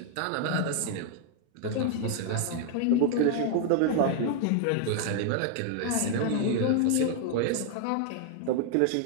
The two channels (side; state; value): both; different; correlation 0.00